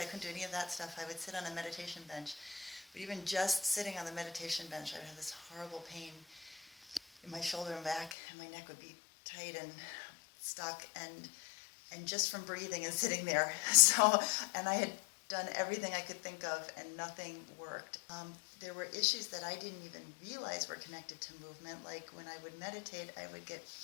couldn't do any of that stuff. I would sit on a meditation bench, but even just sitting on the meditation bench, I would have this horrible pain in my shoulder and back, and my neck would be tight and stuck, and just from breathing and sitting there. So, and I had done everything I could think of, and nothing worked. There were issues that I didn't even realize were connected to movement. Like when I would meditate, I would get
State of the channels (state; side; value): drops out; right; at 8.2 s